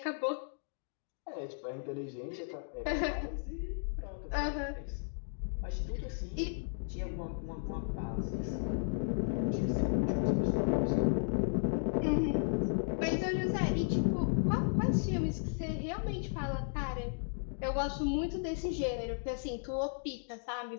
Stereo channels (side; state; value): right; silent; digital silence